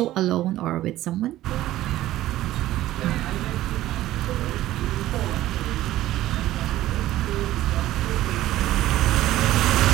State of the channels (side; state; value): left; quieter; 14.9 dB